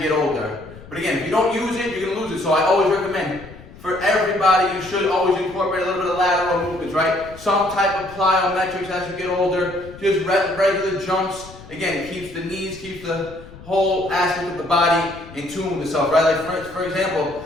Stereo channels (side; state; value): left; noise; rumble, 19 dB below the sound